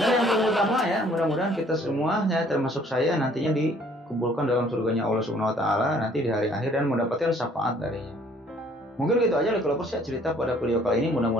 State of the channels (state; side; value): normal; both; correlation 0.59